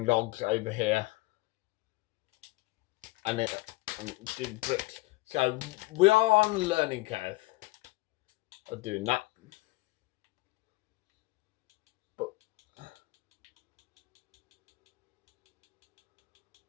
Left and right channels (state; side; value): quieter; right; 21.6 dB